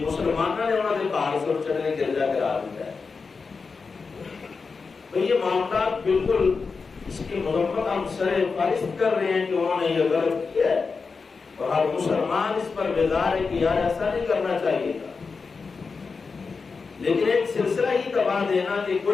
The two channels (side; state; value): right; quieter; 4.8 dB